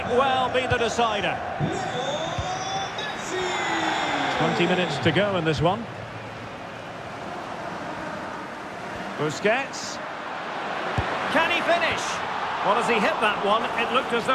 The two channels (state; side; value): identical; both; correlation 1.00